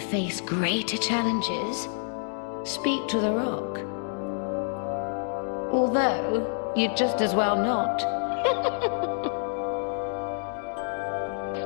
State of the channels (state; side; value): silent; right; 56 dB below the other